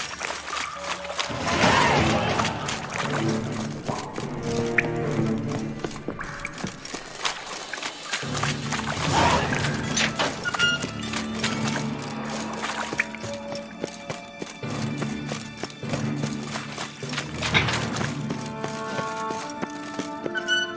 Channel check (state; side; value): identical; both; correlation 1.00